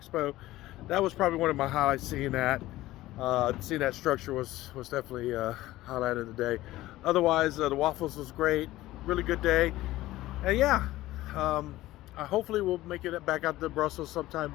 That was probably one of my highlights. Seeing that. Seeing that structure was definitely a highlight of the day. Otherwise, the waffles was great. Really good day. And yeah, hopefully we'll make it back out to Brussels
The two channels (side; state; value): right; quieter; 16.5 dB